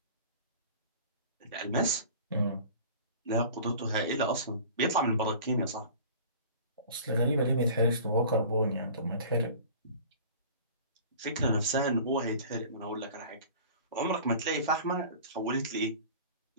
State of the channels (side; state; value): both; inverted; correlation -0.42